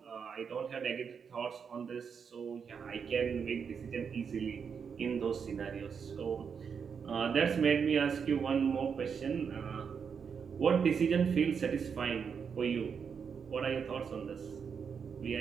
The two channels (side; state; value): left; quieter; 6.5 dB